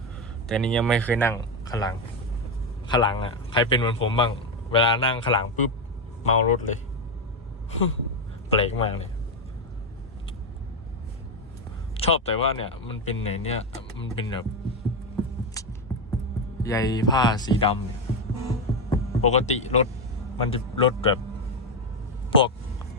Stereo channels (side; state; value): both; normal; correlation 0.08